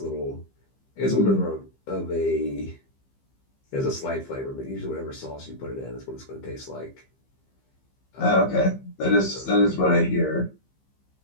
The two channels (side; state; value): right; late; 15 ms